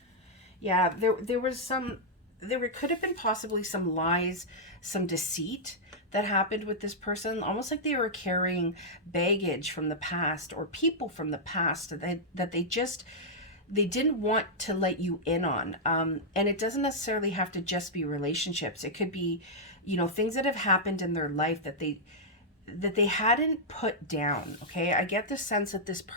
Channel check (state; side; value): normal; both; correlation -0.08